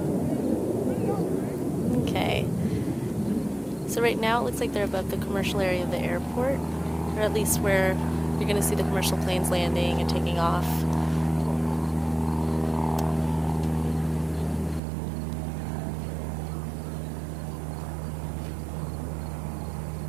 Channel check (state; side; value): drops out; left; at 14.8 s